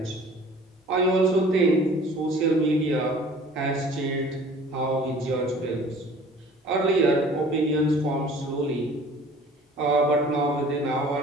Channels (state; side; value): normal; both; correlation 0.49